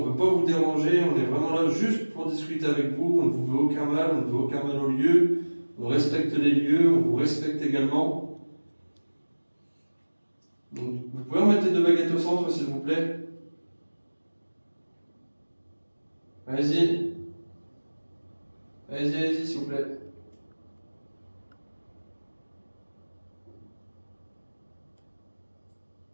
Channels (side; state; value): both; inverted; correlation -1.00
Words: ne veut pas vous déranger, on est vraiment là juste pour discuter avec vous, on ne vous veut aucun mal, on ne veut aucun mal au lieu, on respecte les lieux, on vous respecte également. Donc, vous pouvez remettre les deux baguettes au centre, s'il vous plaît. Allez-y. Allez-y, s'il vous plaît.